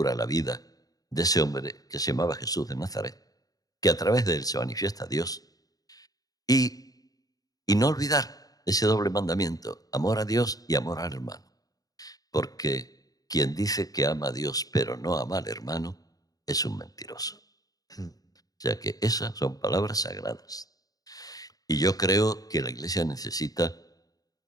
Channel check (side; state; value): right; late; 0.18 ms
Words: la vida de ese hombre que se llamaba Jesús de Nazaret, que a través de él se manifiesta Dios, y no olvidar ese doble mandamiento, amor a Dios y amor al hermano. Porque quien dice que ama a Dios pero no ama al hermano es un mentiroso. Mm. O sea que esas son palabras sagradas. Y yo creo que la iglesia necesita,